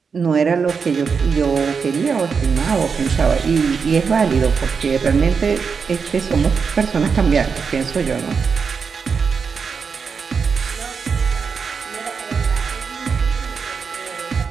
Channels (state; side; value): quieter; left; 5.7 dB